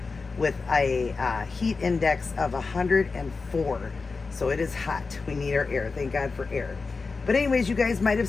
with a heat index of 104. So it is hot. We need our air. Thank God for air. But anyways, you guys might have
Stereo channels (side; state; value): right; quieter; 4.3 dB